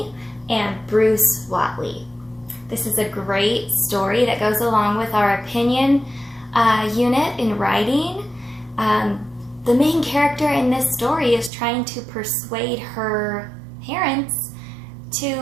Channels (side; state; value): left; drops out; at 11.5 s